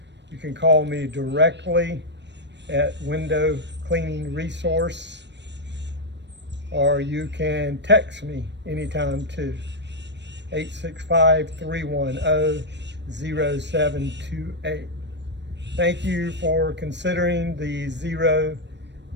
You can call me directly at Window Cleaning Resource, or you can text me anytime too. 865-310-0728. Thank you for considering the Xero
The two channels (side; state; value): left; late; 0.51 ms